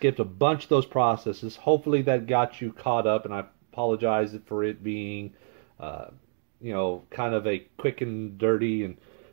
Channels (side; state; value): left; silent; digital silence